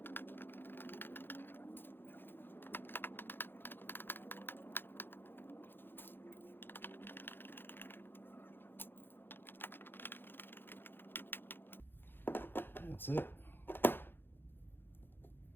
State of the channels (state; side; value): late; right; 0.10 ms